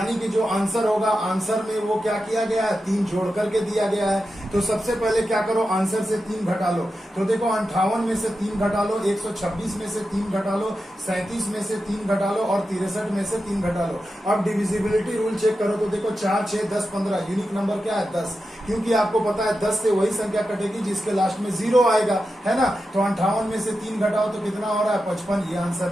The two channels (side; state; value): both; normal; correlation 0.90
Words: कि जो आंसर होगा, आंसर में वो क्या किया गया है, 3 जोड़ करके दिया गया है। तो सबसे पहले क्या करो, आंसर से 3 घटा लो। तो देखो 58 में से 3 घटा लो, 126 में से 3 घटा लो, 37 में से 3 घटा लो और 63 में से 3 घटा लो। अब डिविजिबिलिटी रूल चेक करो। तो देखो 4, 6, 10, 15, यूनिक नंबर क्या है, 10, क्योंकि आपको पता है 10 से वही संख्या कटेगी जिसके लास्ट में 0 आएगा, है ना। तो 58 में से 3 घटाओ तो कितना हो रहा है, 55, ये